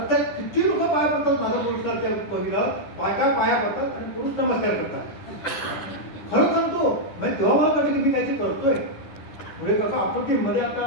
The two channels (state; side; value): late; right; 10 ms